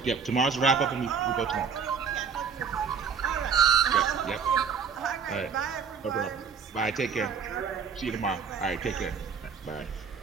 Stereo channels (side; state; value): left; quieter; 6.2 dB